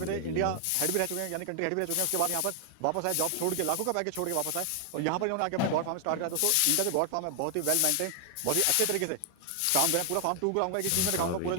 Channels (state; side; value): different; both; correlation 0.00